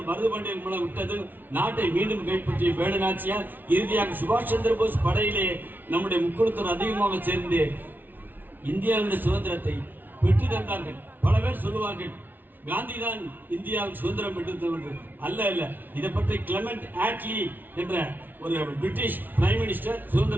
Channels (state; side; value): late; left; 0.088 ms